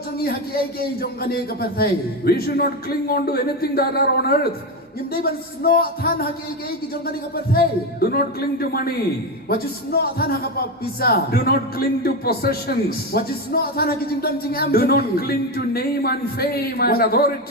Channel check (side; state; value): both; normal; correlation 0.14